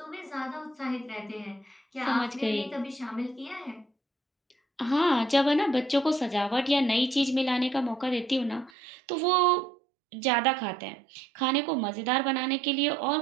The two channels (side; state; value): left; drops out; at 8.7 s